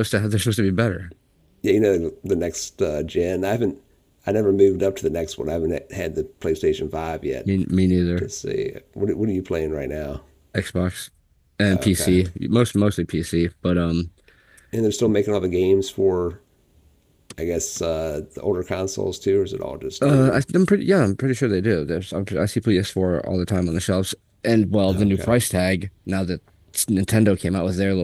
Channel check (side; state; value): both; identical; correlation 1.00